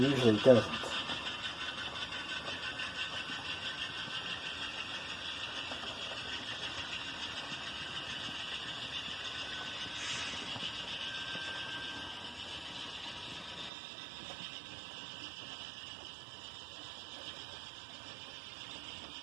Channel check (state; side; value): drops out; left; at 13.7 s